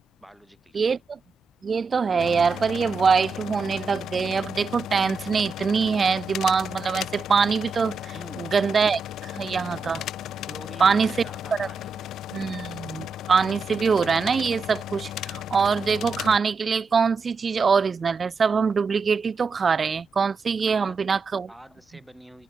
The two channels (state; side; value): quieter; left; 4.6 dB